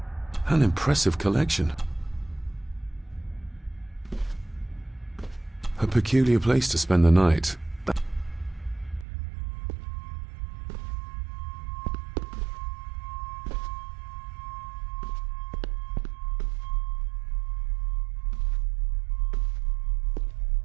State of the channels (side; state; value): left; drops out; at 9.1 s